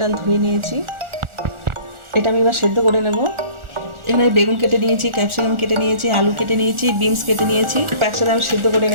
ধুয়ে নিয়েছি, এটা আমি এবার সেদ্ধ করে নেব। এখানে বেগুন কেটে নিয়েছি, ক্যাপসিকাম কেটে নিয়েছি, আলু কেটে নিয়েছি, বিনস কেটে নিয়েছি, একসাথে আমি সেদ্ধ করে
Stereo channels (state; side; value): late; left; 1.4 ms